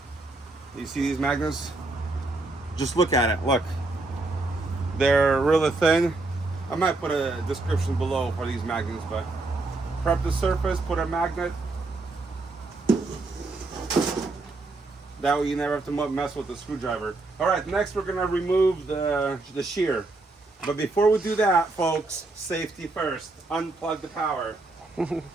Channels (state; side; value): quieter; left; 3.2 dB